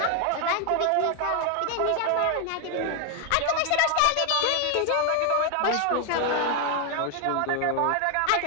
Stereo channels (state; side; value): different; both; correlation 0.01